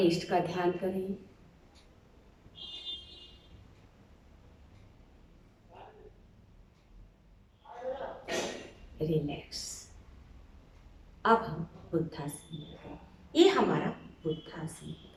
इष्ट का ध्यान करें। रिलैक्स। अब हम बुद्धासन में गए। ये हमारा बुद्धासन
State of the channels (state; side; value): identical; both; correlation 1.00